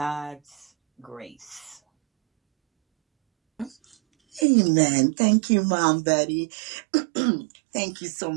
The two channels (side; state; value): left; drops out; at 4.5 s